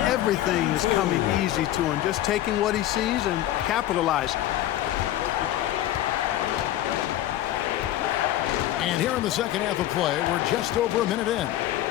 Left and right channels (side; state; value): right; quieter; 13.5 dB